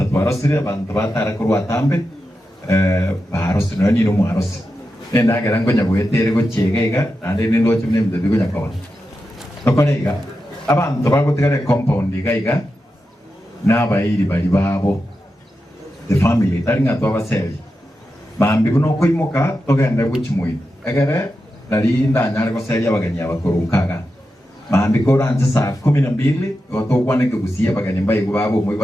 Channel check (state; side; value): normal; both; correlation 0.89